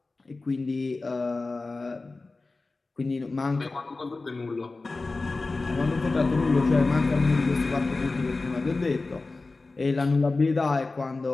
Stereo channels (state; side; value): quieter; right; 3.5 dB